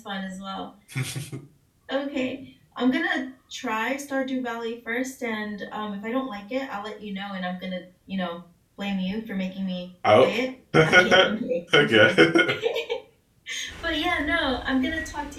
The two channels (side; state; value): both; identical; correlation 1.00